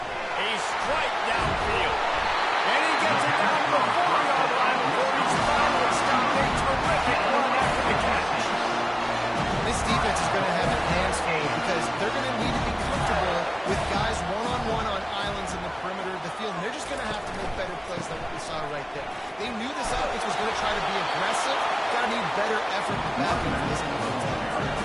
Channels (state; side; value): identical; both; correlation 1.00